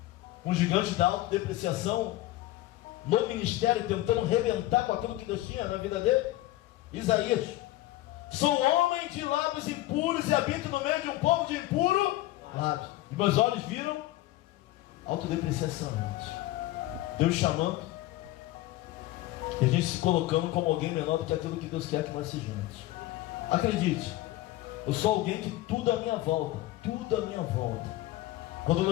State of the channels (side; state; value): right; quieter; 16.5 dB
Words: Um gigante da autodepreciação no ministério, tentando rebentar com aquilo que Deus tinha na vida dele. Isaías. Sou homem de lábios impuros e habito no meio de um povo de impuro lábios. E meus olhos viram autodepreciação. Deus chamando, e a gente se colocando como alguém menor do que aquilo que Deus quer que nós sejamos. Acredite, eu sou alguém que tudo à minha volta, quando eu